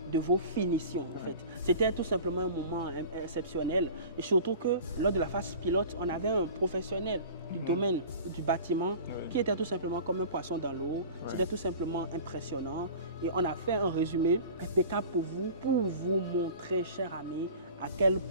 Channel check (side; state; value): both; inverted; correlation -0.39